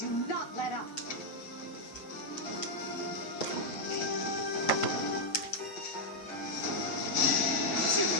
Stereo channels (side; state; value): right; late; 7.7 ms